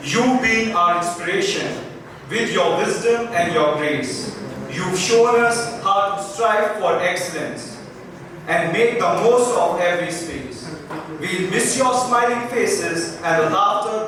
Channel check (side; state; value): both; identical; correlation 1.00